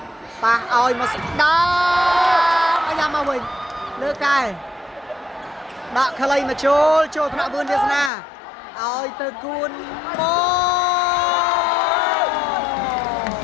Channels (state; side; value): drops out; right; at 8.1 s